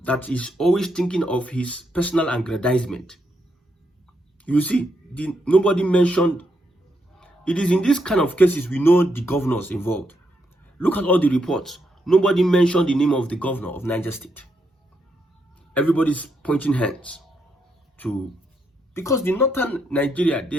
that is always thinking of his personal aggrandizement. You see, nobody mentioned. It is in this kind of cases we know the governors involved. Look at all the reports. Nobody mentioned the name of the governor of Niger State. Everybody's pointing hands to, because the northern Nigeria, they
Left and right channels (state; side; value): normal; both; correlation 0.79